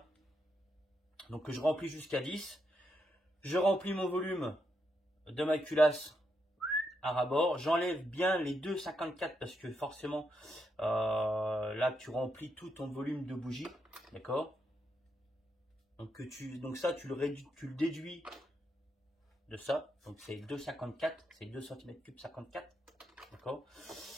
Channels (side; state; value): both; normal; correlation 0.81